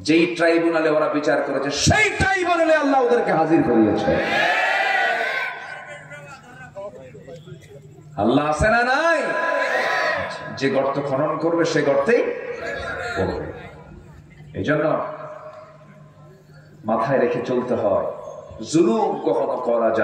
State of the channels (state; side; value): identical; both; correlation 1.00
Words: যেই ট্রাইব্যুনালে ওরা বিচার করেছে সেই ট্রাইব্যুনালে আল্লাহ ওদেরকে হাজির করিয়েছে। আল্লাহ আছে না নাই? যে গর্ত খনন করবে সে গর্তেই পড়বে। এই জন্য মাথায় রেখে চলতে হয়, জুলুম কখনো করা